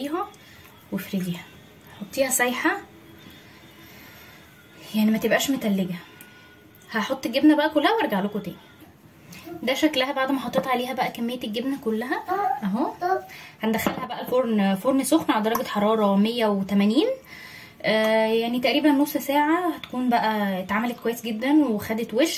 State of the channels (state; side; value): identical; both; correlation 1.00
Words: وافرديها، حطيها سايحه يعني ما تبقاش متلجه. هحط الجبنه بقى كلها وارجع لكم تاني. ده شكلها بعد ما حطيت عليها بقى كميه الجبنه كلها اهو. هندخلها بقى الفرن، فرن سخن على درجه حراره 180 يعني تقريبا نص ساعه هتكون بقى اتعملت كويس جدا وخدت